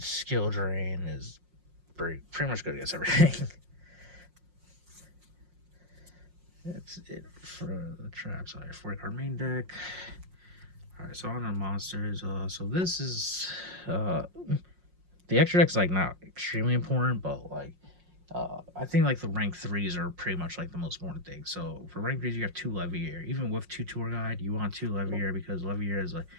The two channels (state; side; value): late; left; 5.6 ms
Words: skill drain is pretty much good against everything. That's it for the traps. Sorry, 40-card main deck. Alright, so on the monsters. So this is the extra deck's like not extremely important, but like I think like the rank 3s are pretty much like the most important thing. So for rank 3s, you have 2 Leviair. Even with 2 Tour Guide, you want 2 Leviair because Leviair is like